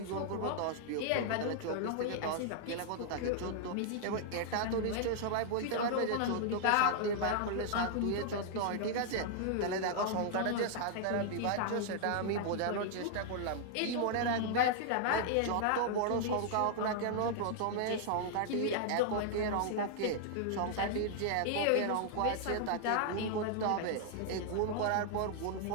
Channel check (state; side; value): different; both; correlation -0.01